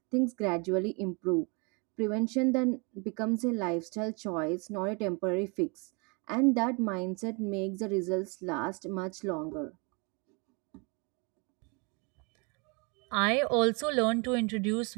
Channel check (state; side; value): quieter; left; 32.0 dB